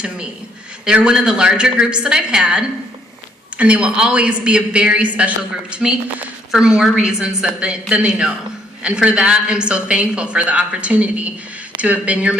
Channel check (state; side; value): normal; both; correlation 0.67